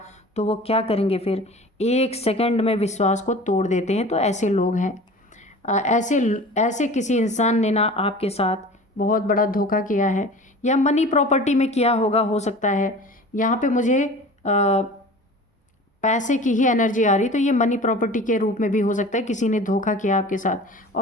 तो वो क्या करेंगे, फिर 1 सेकंड में विश्वास को तोड़ देते हैं। तो ऐसे लोग हैं। ऐसे ऐसे किसी इंसान ने ना आपके साथ बहुत बड़ा धोखा किया है, या मनी प्रॉपर्टी में किया होगा, हो सकता है। यहाँ पे मुझे पैसे की ही एनर्जी आ रही, तो ये मनी प्रॉपर्टी के रूप में भी हो सकता है। किसी ने धोखा किया आपके साथ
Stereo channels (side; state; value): both; normal; correlation 0.40